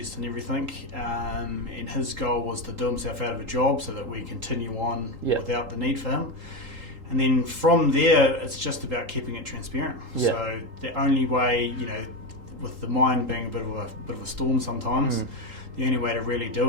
and everything. And his goal was to do himself out of a job so that we continue on without the need for him. And then from there, it's just about keeping it transparent. So the only way, with the mind being a bit of a storm sometimes. The only way to really do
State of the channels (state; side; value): late; left; 3.8 ms